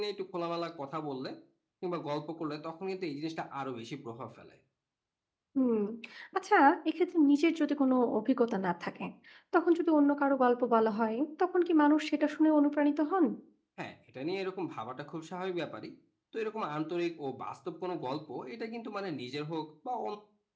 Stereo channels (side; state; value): both; identical; correlation 1.00